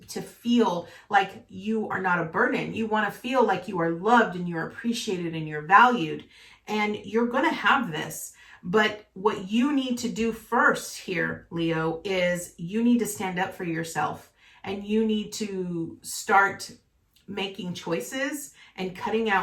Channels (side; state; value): both; identical; correlation 1.00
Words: feel like you are not a burden. You want to feel like you are loved and you're appreciated and you're valued. And you're going to have this. But what you need to do first here, Leo, is you need to stand up for yourself, and you need to start making choices and cutting